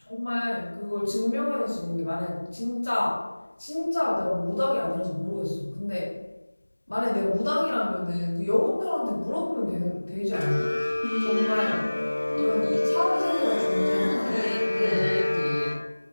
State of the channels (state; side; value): inverted; both; correlation -1.00